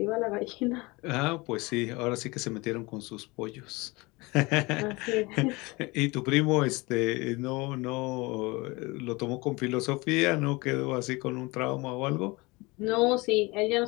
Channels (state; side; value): quieter; right; 24.2 dB